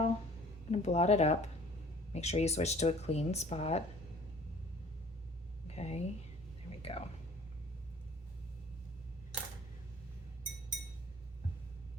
I'm gonna blot it up. Make sure you switch to a clean spot. Okay, there we go.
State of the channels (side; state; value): both; normal; correlation 0.51